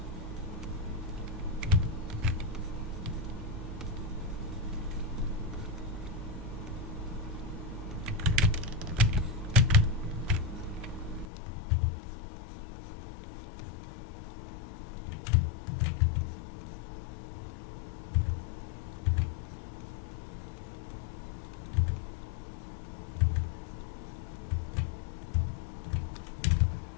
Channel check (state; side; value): drops out; right; at 11.2 s